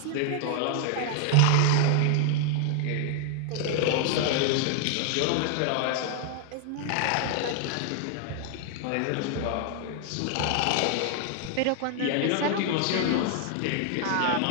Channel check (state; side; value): different; both; correlation 0.00